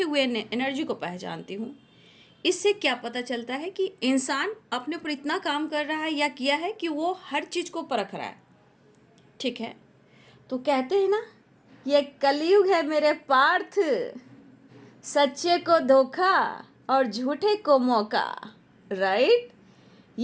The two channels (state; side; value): identical; both; correlation 1.00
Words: हुए एनर्जी को पहचानती हूँ। इससे क्या पता चलता है कि इंसान अपने ऊपर इतना काम कर रहा है या किया है कि वो हर चीज़ को परख रहा है, ठीक है? तो कहते हैं ना, ये कलयुग है मेरे पार्थ, सच्चे को धोखा और झूठे को मौका, राइट?